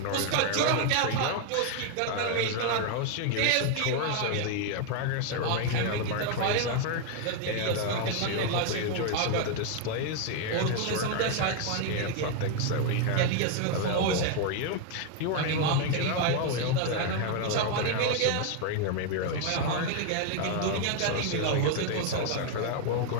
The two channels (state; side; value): different; both; correlation 0.01